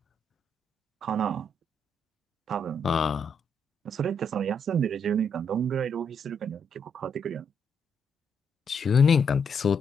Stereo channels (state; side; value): normal; both; correlation 0.76